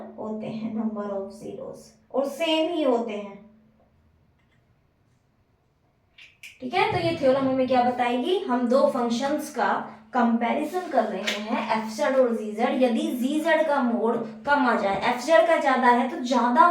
होते हैं, नंबर ऑफ जीरोज, और सेम ही होते हैं। ठीक है, तो ये थ्योरम हमें क्या बताएगी, हम दो फंक्शंस का कंपैरिजन कर रहे हैं एफ जेड और जी जेड। यदि जी जेड का मोड कम आ जाए, एफ जेड का ज्यादा है, तो ज्यादा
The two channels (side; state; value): both; identical; correlation 1.00